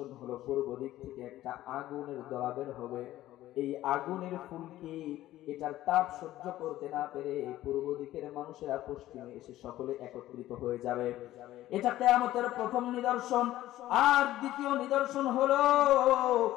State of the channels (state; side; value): quieter; right; 14.6 dB